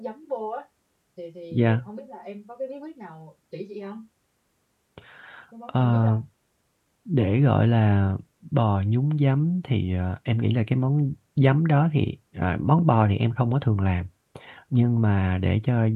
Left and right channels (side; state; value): both; identical; correlation 1.00